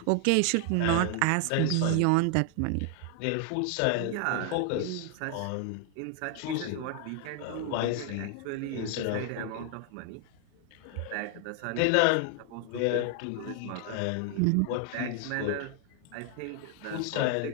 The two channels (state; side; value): different; both; correlation 0.00